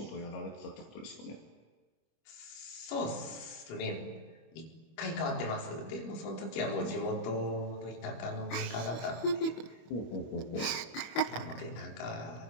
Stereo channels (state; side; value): late; right; 25 ms